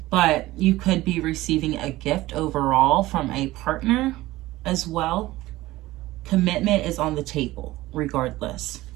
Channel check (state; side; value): quieter; left; 17.5 dB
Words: but you could be receiving a gift overall from a partner as well. Commitment is on the table regardless